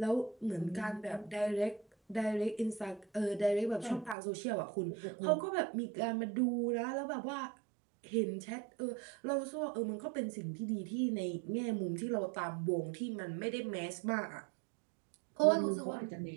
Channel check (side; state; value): left; drops out; at 4.2 s